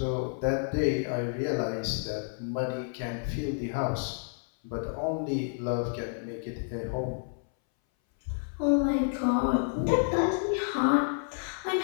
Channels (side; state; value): right; silent; 58 dB below the other